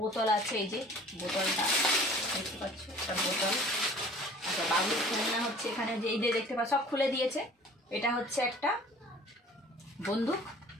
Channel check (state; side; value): normal; both; correlation 0.48